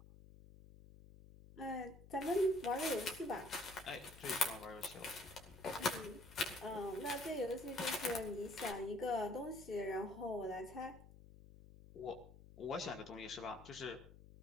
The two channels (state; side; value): noise; left; hum, 18 dB below the sound